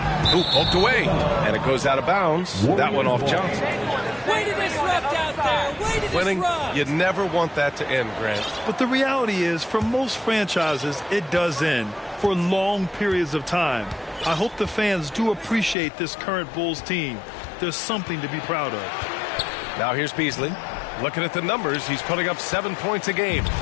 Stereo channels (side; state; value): right; drops out; at 15.8 s